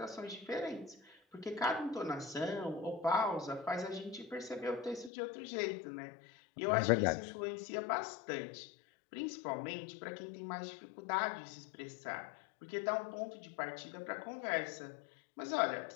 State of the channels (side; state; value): right; drops out; at 5.1 s